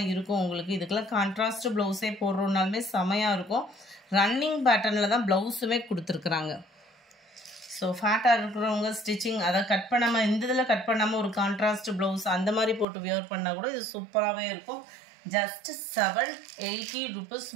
இருக்கும் உங்களுக்கு. இதுக்கெல்லாம் கான்ட்ராஸ்ட் ப்ளவுஸே போடுறோன்னாலுமே செமையாக இருக்கும். ரன்னிங் பேட்டர்னில் தான் ப்ளவுஸுமே கொடுத்துருக்குறாங்க. ஸோ ஃபேட்டாக இருக்கிறவங்க ஸ்டிச்சிங் அதை கட் பண்ணாமல், இந்த இதில் கட் பண்ணாமல் ஒரு கான்ட்ராஸ்ட் ப்ளவுஸ் அந்த மாதிரி போட்டு வியர் பண்ணால் கூட இது சூப்பராகவே இருக்கும். ஜஸ்ட் 780 ருபீஸ்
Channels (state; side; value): drops out; left; at 12.9 s